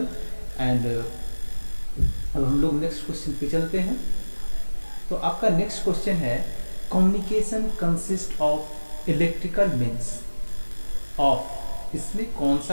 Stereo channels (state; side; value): inverted; both; correlation -1.00